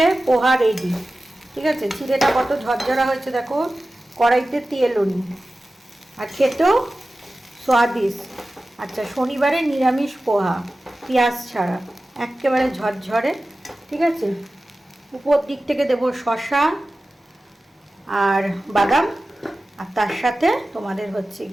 পোহা রেডি। ঠিক আছে, চিড়েটা কত ঝরঝরা হয়েছে দেখো, কড়াইতে তেলও নি, আর খেতেও স্বাদিষ্ট। আচ্ছা, শনিবারে নিরামিষ পোহা, পেঁয়াজ ছাড়া, একেবারে ঝরঝরে। ঠিক আছে, উপর দিক থেকে দেবো শসা আর বাদাম, আর তার সাথে তোমাদের হচ্ছে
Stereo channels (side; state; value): both; normal; correlation 0.95